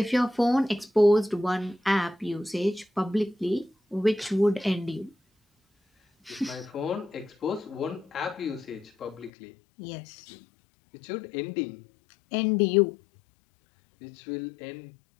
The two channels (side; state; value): right; drops out; at 9.3 s